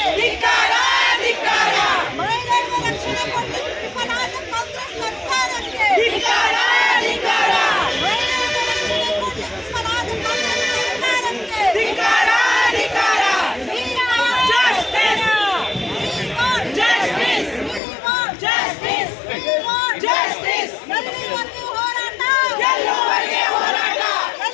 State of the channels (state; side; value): drops out; right; at 17.8 s